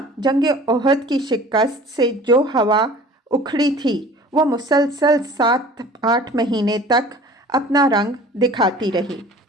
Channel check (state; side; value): normal; both; correlation 0.46